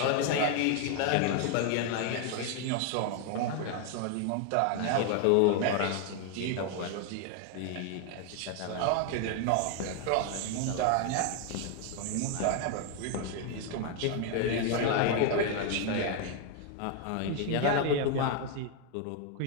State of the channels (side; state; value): both; different; correlation 0.01